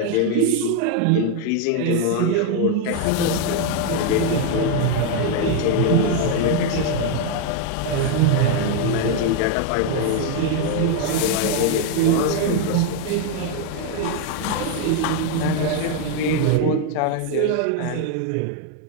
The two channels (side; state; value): both; different; correlation 0.01